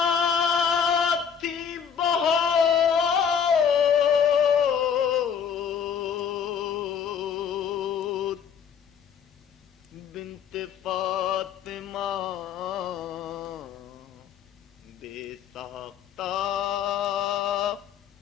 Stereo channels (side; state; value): right; quieter; 7.5 dB